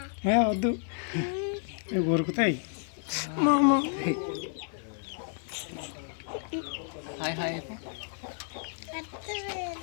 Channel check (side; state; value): right; silent; 57 dB below the other